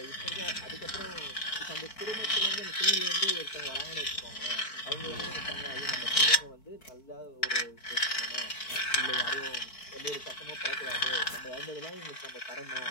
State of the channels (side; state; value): right; late; 4.5 ms